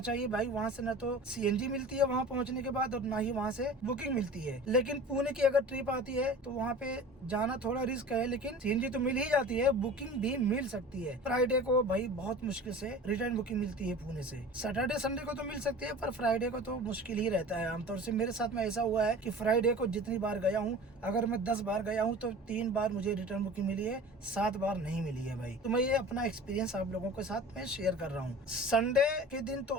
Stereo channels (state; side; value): normal; both; correlation 0.39